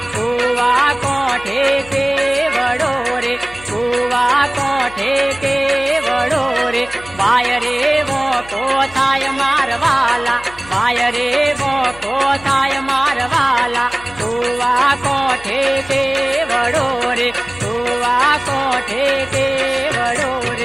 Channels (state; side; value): noise; left; hum, 20 dB below the sound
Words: કુવા કોઠે કેવડો રે કુવા કોઠે કેવડો રે વાય રે વોકો થાય મારવાલા વાય રે વોકો થાય મારવાલા કુવા કોઠે કેવડો રે કુવા કોઠે કેવડો